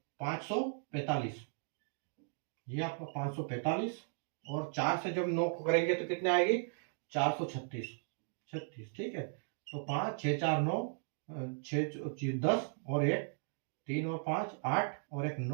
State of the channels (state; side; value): silent; left; 53 dB below the other